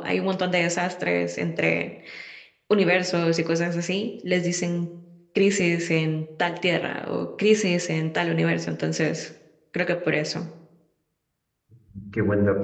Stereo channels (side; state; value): both; identical; correlation 1.00